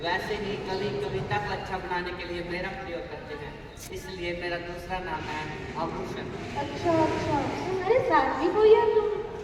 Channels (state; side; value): identical; both; correlation 1.00